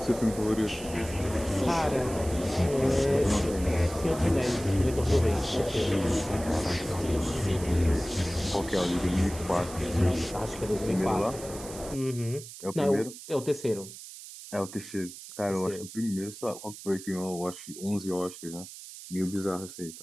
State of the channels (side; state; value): right; noise; hiss, 14 dB below the sound